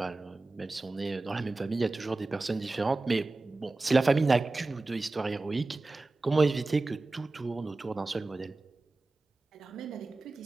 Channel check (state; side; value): quieter; left; 3.2 dB